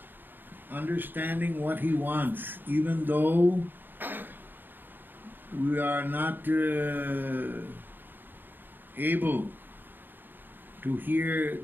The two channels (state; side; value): late; left; 0.094 ms